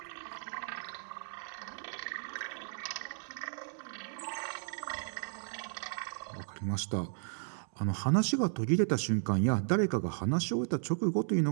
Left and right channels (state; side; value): silent; left; digital silence